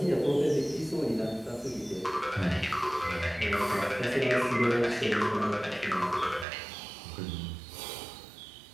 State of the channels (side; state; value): left; drops out; at 6.5 s